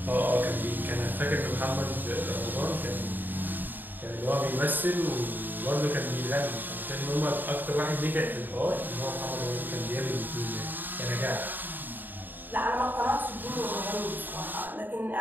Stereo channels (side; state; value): left; late; 0.090 ms